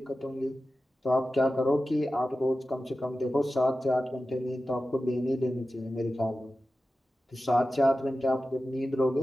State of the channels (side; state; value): both; normal; correlation 0.94